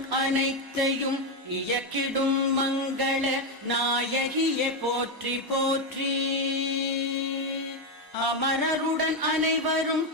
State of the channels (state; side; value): normal; both; correlation 0.07